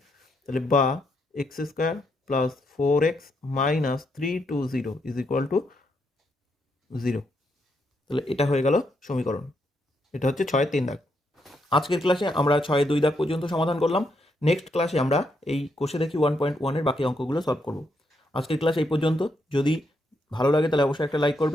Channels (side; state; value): both; normal; correlation 0.78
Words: তাহলে বা x square plus 4x minus 320 is equal two 0। তাহলে এটা হয়ে গেল সমীকরণ। এটা হচ্ছে 6-3 দাগ। আজকের ক্লাসে আমরা 6-2 দাগ পর্যন্ত সমাধান করলাম। নেক্সট ক্লাসে আমরা এই কোষে দেখি 1.1-এর বাকি অঙ্কগুলো সলভ করব। আজকের ক্লাস এই পর্যন্ত। যদি ভালো লাগে তাহলে অবশ্যই একটা লাইক